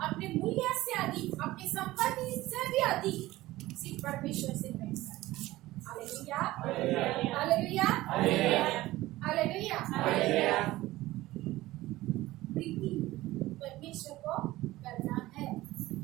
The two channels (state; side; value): quieter; left; 17.3 dB